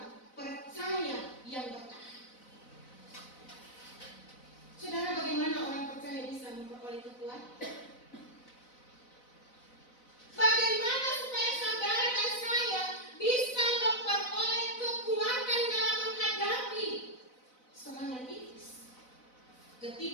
percaya yang bertahan. Saudara, bagaimana orang percaya bisa memperoleh kekuatan? Bagaimana supaya saudara dan saya bisa memperoleh kekuatan dalam menghadapi serangan iblis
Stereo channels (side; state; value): right; late; 4.0 ms